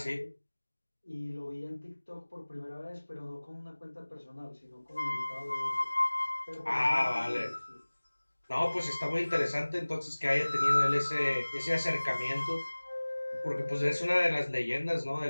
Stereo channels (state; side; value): inverted; both; correlation -1.00